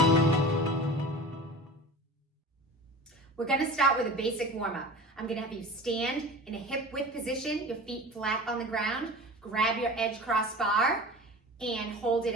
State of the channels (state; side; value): normal; both; correlation 0.36